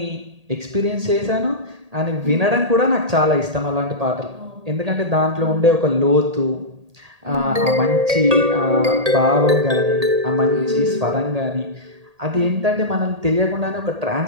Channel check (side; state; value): left; late; 1.8 ms